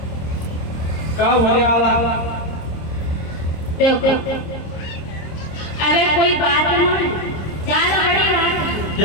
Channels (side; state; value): right; late; 26 ms